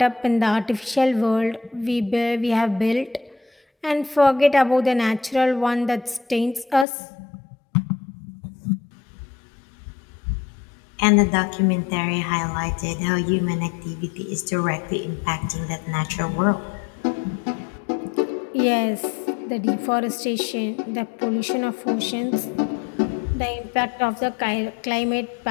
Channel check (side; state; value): right; drops out; at 6.9 s